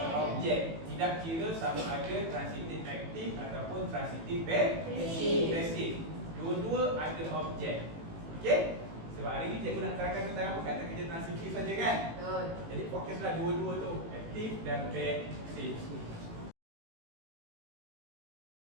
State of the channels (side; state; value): left; late; 18 ms